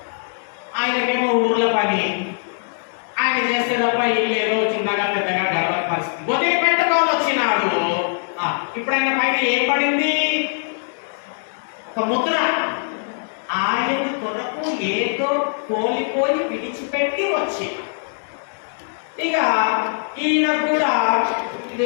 ఆయనకేమో ఊర్ల పని, ఆయన చేస్తే తప్ప ఇల్లు ఏదో చిన్నగా పెద్దగా గడవని పరిస్థితి. వదిలిపెట్టుకోని వచ్చినాడు. ఇప్పుడు ఆయన పైన ఏం పడింది? ఒక ముద్ర. ఆయన కొరకు ఏదో కోల్పోయి విడిచిపెట్టి వచ్చి, ఇక ఈయన కూడా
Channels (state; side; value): silent; right; 65 dB below the other